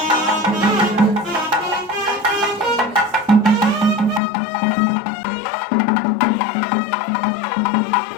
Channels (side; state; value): right; drops out; at 4.2 s